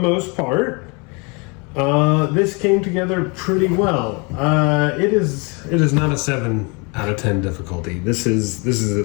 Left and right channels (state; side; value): quieter; right; 30.8 dB